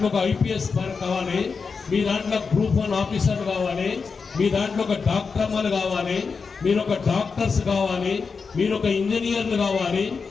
ఒక IPS కావాలి, మీ దాంట్లో గ్రూప్ 1 ఆఫీసర్ కావాలి, మీ దాంట్లో ఒక డాక్టర్లు కావాలి, మీరు ఒక డాక్టర్స్ కావాలి, మీరు ఒక ఇంజనీర్లు కావాలి.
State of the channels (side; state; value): right; quieter; 5.1 dB